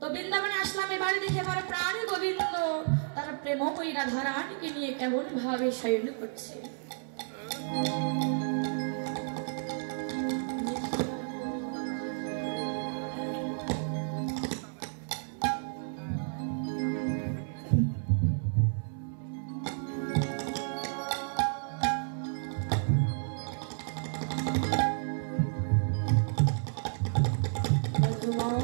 বৃন্দাবনে আসলাম, এবারে দেখে আমার প্রাণ গোবিন্দ তার প্রেমময়ী রাধা রানীকে নিয়ে কেমন ভাবে শয়ন করছে।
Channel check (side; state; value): left; silent; 57 dB below the other